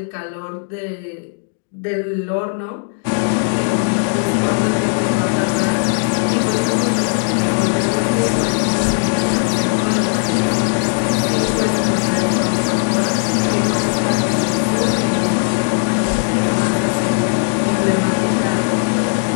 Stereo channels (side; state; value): right; silent; 64 dB below the other